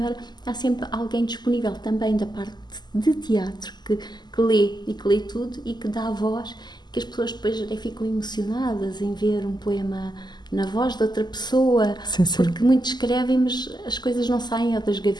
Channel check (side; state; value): right; late; 0.21 ms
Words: há sempre alguém disponível também da parte de teatro que lê e que lê tudo e que dá a voz, que as pessoas depois até ficam emocionadas em ver um poema na voz de outra pessoa, sim. porque muitos escrevem, mas as coisas não saem ou das